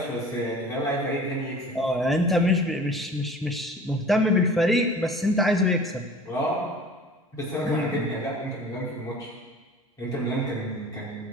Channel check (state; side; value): normal; both; correlation 0.44